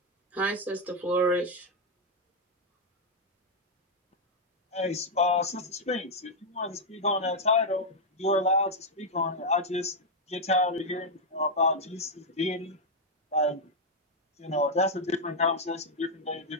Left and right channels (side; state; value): both; normal; correlation -0.01